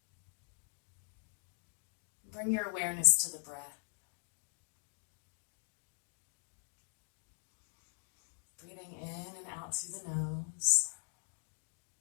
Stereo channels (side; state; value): right; silent; digital silence